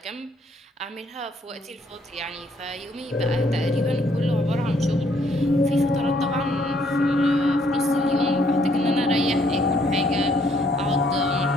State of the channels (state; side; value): normal; both; correlation 0.67